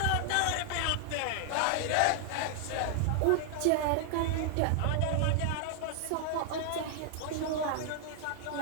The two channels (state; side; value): different; both; correlation 0.00